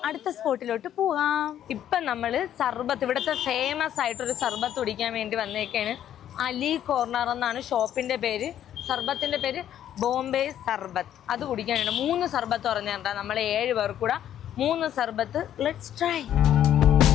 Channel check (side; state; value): right; quieter; 10.8 dB